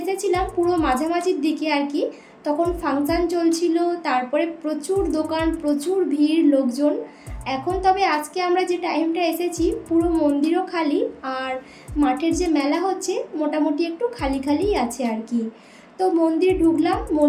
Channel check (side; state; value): both; identical; correlation 1.00